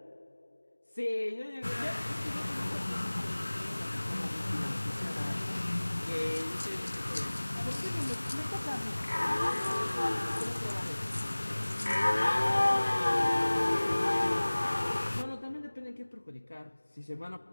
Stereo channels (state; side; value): inverted; both; correlation -1.00